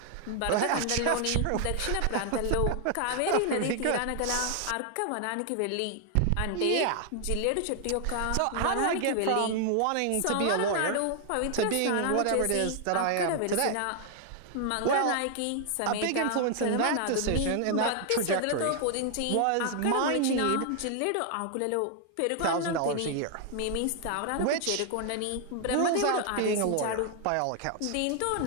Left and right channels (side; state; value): both; different; correlation 0.00